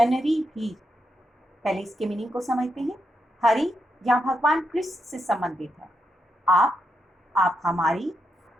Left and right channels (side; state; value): both; normal; correlation 0.83